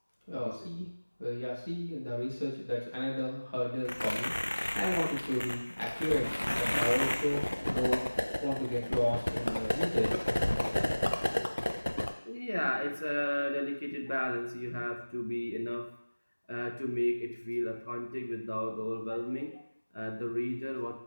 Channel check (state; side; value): inverted; both; correlation -1.00